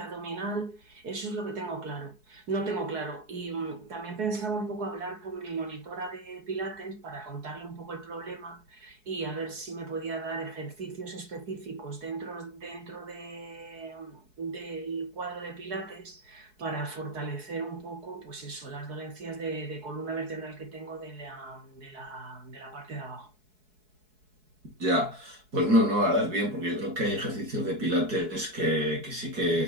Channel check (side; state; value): left; late; 4.7 ms